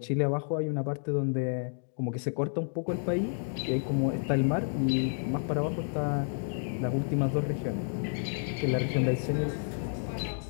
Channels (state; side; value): silent; right; digital silence